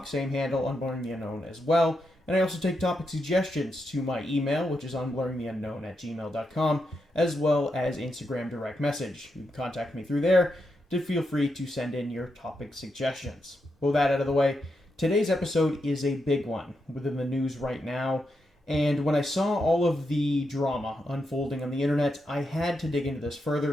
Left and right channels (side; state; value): both; normal; correlation 0.84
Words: same handle, Unblurring the Unknown as well. And I also take topic suggestions to my email, which is unblurringtheunknown@gmail.com, as well as Instagram direct message. You can contact me through there to feel free to send in your topic suggestions. With that out of the way, today's episode is a big one within the news right now. And when I saw all of the drama unfolding on the internet, I had to dig into this